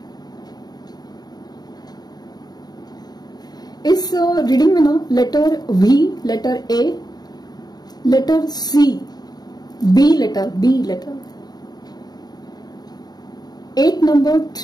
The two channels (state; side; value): late; right; 0.19 ms